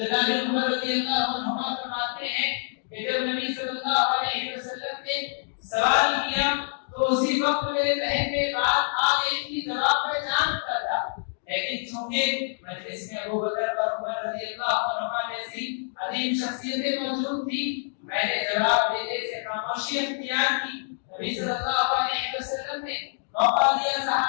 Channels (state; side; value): silent; right; digital silence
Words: بن عمر رضی اللہ عنہما فرماتے ہیں کہ جب نبی صلی اللہ علیہ وسلم نے سوال کیا تو اسی وقت میرے ذہن میں بات آ گئی کہ جواب میں جانتا تھا، لیکن چونکہ مجلس میں ابو بکر اور عمر رضی اللہ عنہما جیسی عظیم شخصیتیں موجود تھی، میں نے جواب دینے سے خاموشی اختیار کی۔ نبی صلی اللہ علیہ وسلم نے موقع دیا